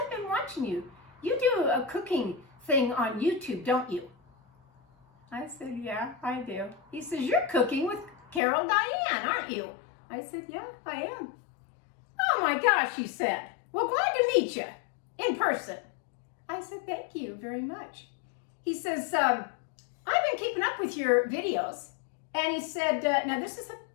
been watching you. You do a cooking thing on YouTube, don't you? I said, yeah, I do. He says, you're cooking with Carol Diane, aren't you? I said, yeah, I am. Oh my gosh, he said. Well, glad to meet you in person. I said, thank you very much. He says, I've been keeping up with your videos. And he said, now this is a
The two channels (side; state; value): right; drops out; at 8.4 s